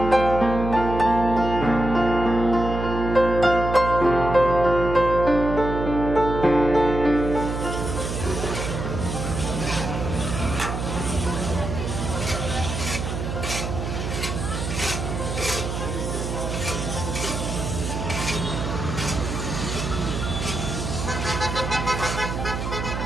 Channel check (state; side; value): noise; right; hum, 4 dB below the sound